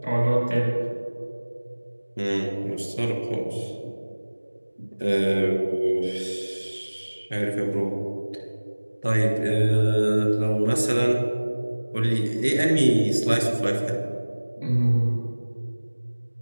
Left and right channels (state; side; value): inverted; both; correlation -1.00